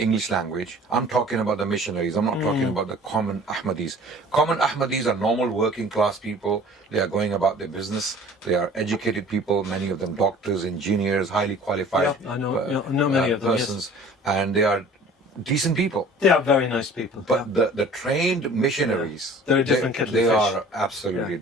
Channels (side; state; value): both; normal; correlation 0.47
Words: English language, I'm talking about the missionaries, I'm not talking about the common Ahmadis. Common Ahmadis are normal working class people. They are going about their business. They are educated people, many of them doctors, engineers, highly qualified I know many of them, persons. Yes. And they are decent people. They are very nice people. But the trained missionaries, they're a different kettle of they fish. are absolutely